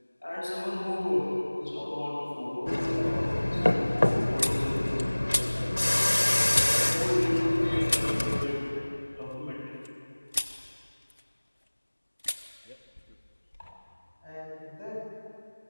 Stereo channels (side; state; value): both; inverted; correlation -1.00